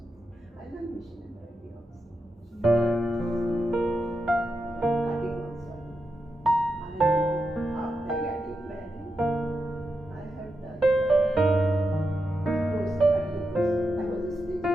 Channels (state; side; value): normal; both; correlation 0.86